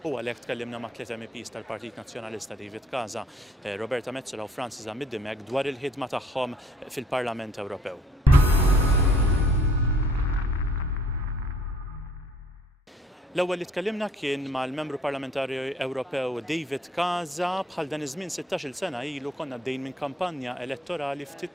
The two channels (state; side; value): normal; both; correlation 0.59